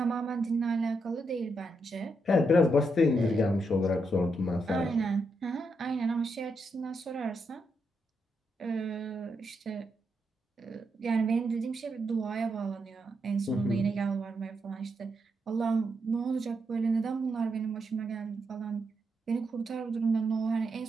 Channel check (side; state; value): both; normal; correlation 0.82